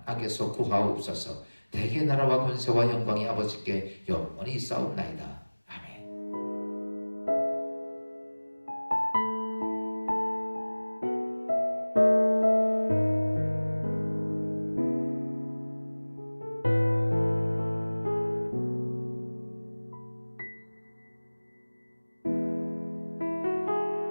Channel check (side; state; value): both; inverted; correlation -1.00